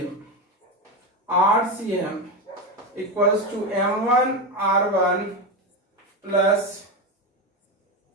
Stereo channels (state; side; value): normal; both; correlation 0.15